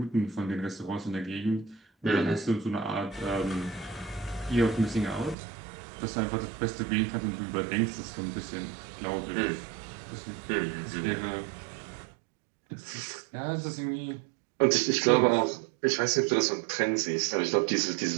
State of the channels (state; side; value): drops out; left; at 5.4 s